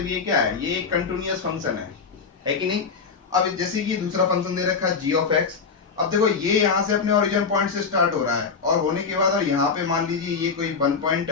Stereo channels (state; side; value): quieter; right; 5.3 dB